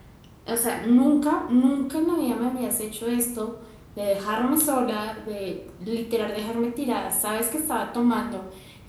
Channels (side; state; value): both; identical; correlation 1.00